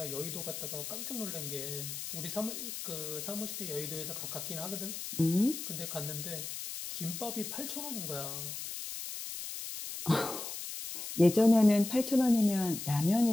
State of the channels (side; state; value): left; noise; hiss, 7 dB below the sound